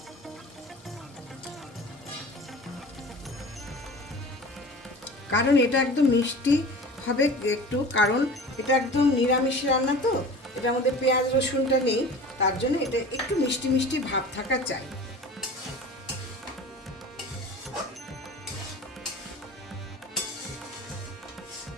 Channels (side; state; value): both; normal; correlation 0.38